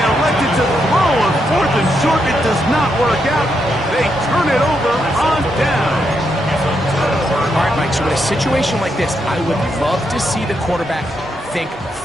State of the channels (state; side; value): normal; both; correlation 0.81